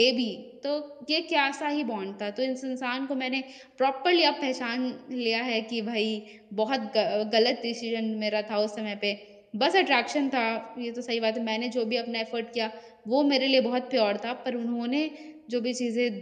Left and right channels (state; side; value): identical; both; correlation 1.00